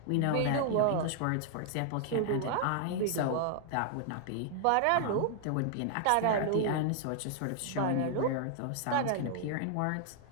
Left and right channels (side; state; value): both; different; correlation 0.00